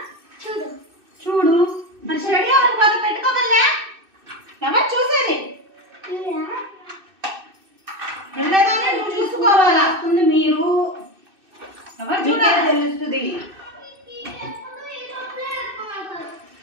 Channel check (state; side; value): late; left; 2.6 ms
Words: చూడు. మరి స్టడీ అవర్ బాగా పెట్టుకోగలరా? ఎవరు చూసేది? వెళ్ళేదాన్ని నువ్వు చూసుకోవాలా? మీరు ఎవరు చూడాలి తెలుస్తుంది.